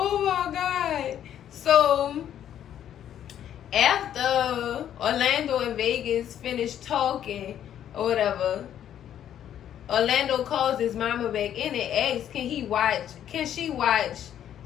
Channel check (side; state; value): right; quieter; 10.4 dB